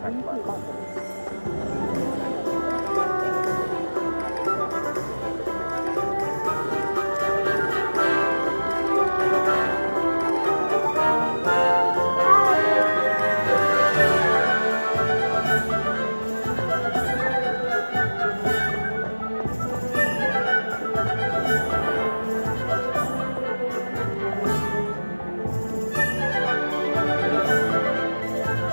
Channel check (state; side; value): inverted; both; correlation -1.00